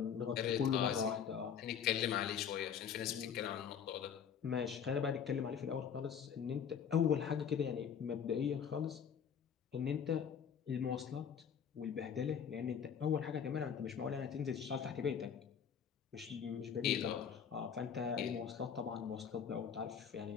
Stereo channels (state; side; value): quieter; right; 7.6 dB